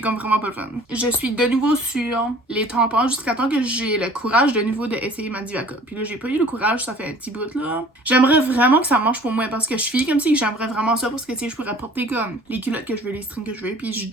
vraiment pas le fun. Je suis de nouveau sur les tampons jusqu'à temps que j'ai le courage de nouveau d'essayer ma Diva Cup. Puis là, j'ai pas eu le courage, ça fait un petit bout là. J'aimerais vraiment que ça marche pour moi parce que je suis comme si j'aimerais vraiment ça parce que tu sais, je pourrais porter comme les culottes que je veux, les strings que je veux. Puis je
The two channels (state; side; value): normal; both; correlation 0.49